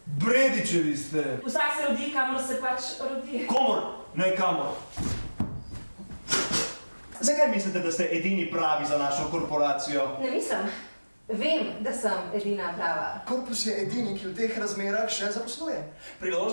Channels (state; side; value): inverted; both; correlation -1.00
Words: Bredičevi ste. Vsak se rodi, kamor se pač rodi. Komor, ne kamor. Zakaj mislite, da ste edini pravi za našo korporacijo? Ne mislim. Vem, da sem edina prava. Korpus je edini, ki v teh razmerah še zaposluje.